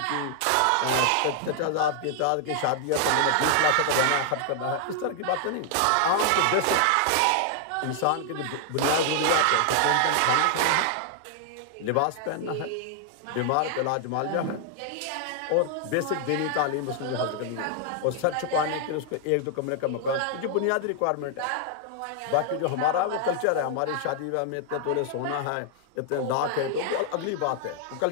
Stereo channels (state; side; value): different; both; correlation 0.00